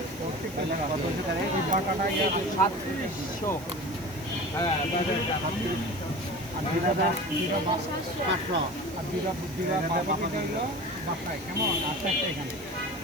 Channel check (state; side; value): noise; right; hiss, 19 dB below the sound